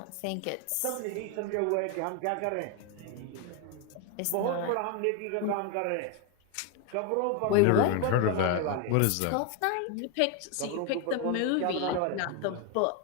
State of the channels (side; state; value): both; different; correlation 0.01